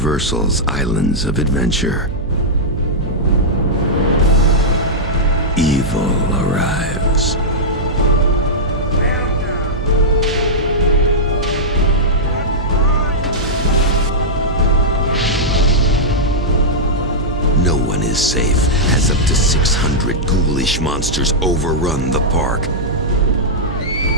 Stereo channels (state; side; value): noise; right; hum, 8 dB below the sound